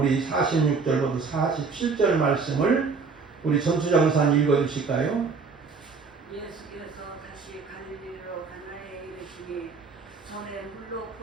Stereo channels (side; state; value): left; quieter; 4.8 dB